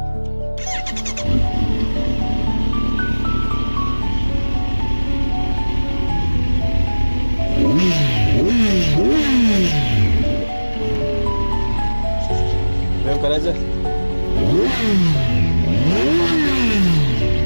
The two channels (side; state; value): both; inverted; correlation -1.00